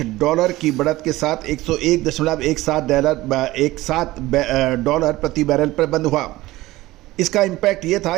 डॉलर की बढ़त के साथ 101.17 डॉलर प्रति बैरल पर बंद हुआ। इसका इम्पैक्ट ये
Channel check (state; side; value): quieter; left; 18.0 dB